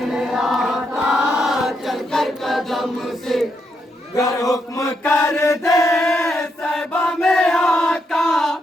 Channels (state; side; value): normal; both; correlation 0.79